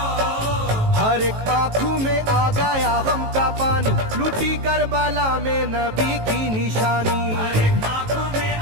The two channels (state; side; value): late; left; 18 ms